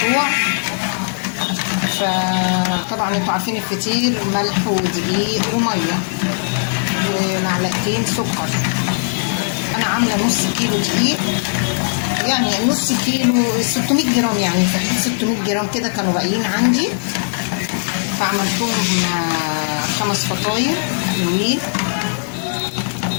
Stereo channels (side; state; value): right; silent; digital silence